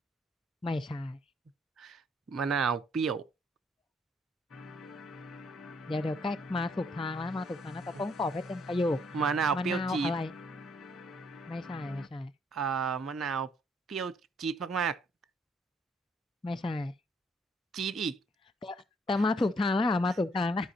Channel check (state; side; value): normal; both; correlation 0.68